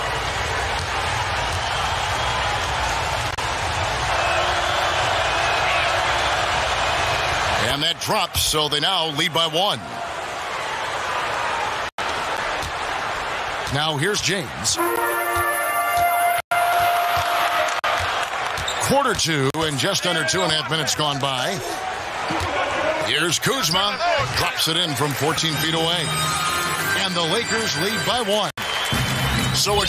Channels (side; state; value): both; identical; correlation 1.00